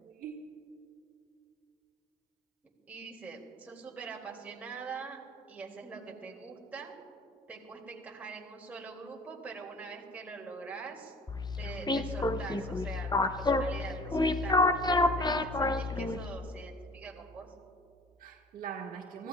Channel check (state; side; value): normal; both; correlation 0.47